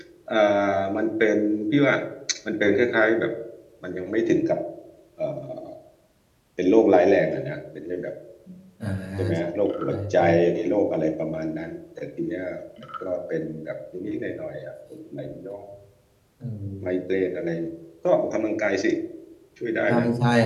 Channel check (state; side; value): identical; both; correlation 1.00